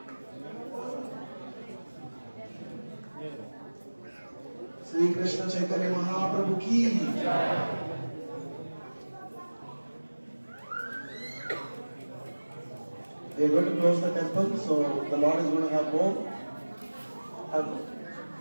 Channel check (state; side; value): inverted; both; correlation -1.00